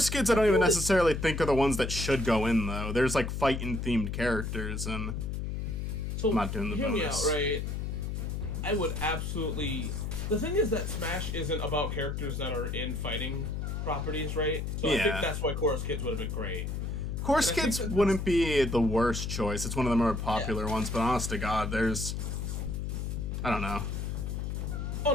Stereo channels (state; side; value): noise; left; hum, 3 dB below the sound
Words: Kids I don't even necessarily think are the ones that should go in though. There's like fighting themed characters and So, I'm not doing the hear me out, bonus. right? I would absolutely... The thing is that Smash isn't about characters that are in fighting properties, right? So I Yeah. think that's why Chorus Kids would have been great. Course And I think Kids that wouldn't be the worst choice. It's one of the more popular ones, but honest to God, there's... I don't know. Oh